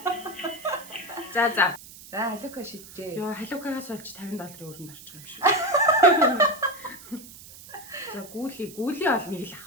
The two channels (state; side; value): noise; right; hiss, 17 dB below the sound